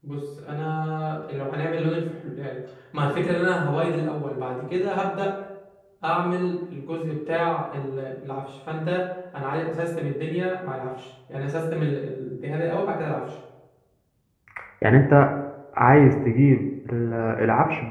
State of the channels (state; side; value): identical; both; correlation 1.00